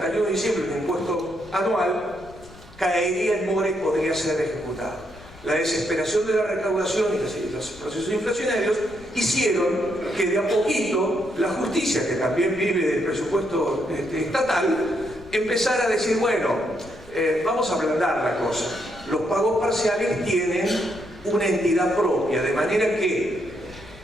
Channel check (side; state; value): left; noise; rumble, 21 dB below the sound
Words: de diciembre un impuesto anual caería en mora y podría ser ejecutado. La desesperación de la recaudación y los procesos inflacionarios hicieron que de a poquito la justicia, que también vive del presupuesto estatal, empezara a decir, bueno, vamos a ablandar la cosa. Los pagos parciales tienen una entidad propia, de manera que